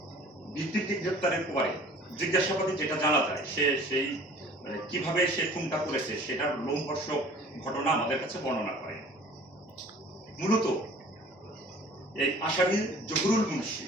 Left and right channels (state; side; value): normal; both; correlation 0.48